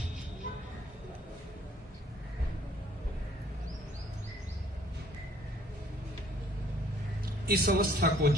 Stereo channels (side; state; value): both; normal; correlation 0.59